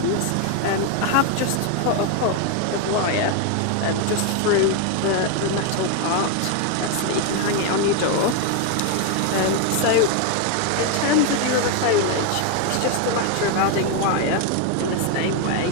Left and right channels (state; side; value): different; both; correlation 0.01